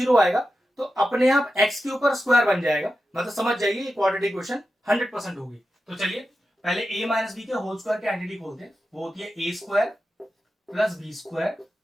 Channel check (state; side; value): normal; both; correlation 0.91